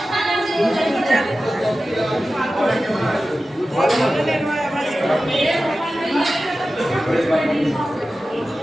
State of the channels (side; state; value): both; normal; correlation 0.94